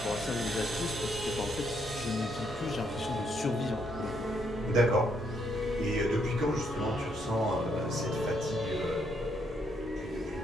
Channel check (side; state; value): both; normal; correlation 0.74